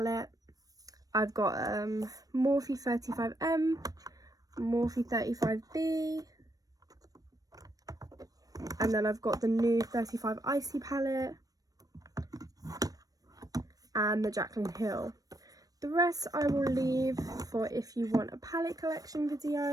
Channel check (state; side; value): late; left; 0.18 ms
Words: I've got Morphe 35M, Morphe 35B, and then I've got the new 35 Icy palette and the Jaclyn Hill. The rest I will leave for if you want a palette collection